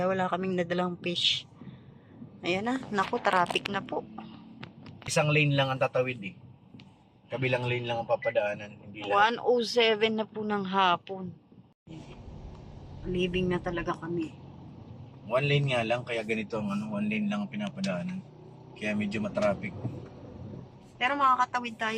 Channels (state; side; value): identical; both; correlation 1.00